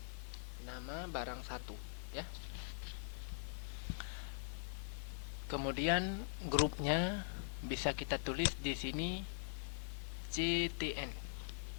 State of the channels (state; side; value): silent; right; digital silence